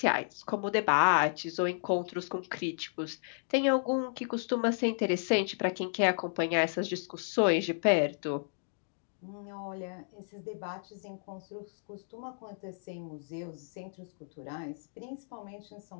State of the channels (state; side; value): silent; right; digital silence